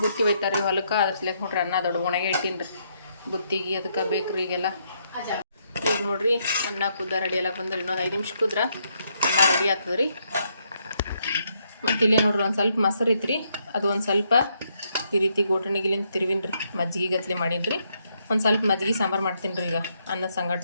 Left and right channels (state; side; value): inverted; both; correlation -0.75